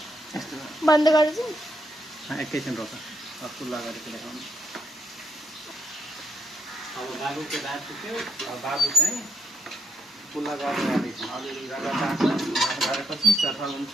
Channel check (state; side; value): normal; both; correlation 0.77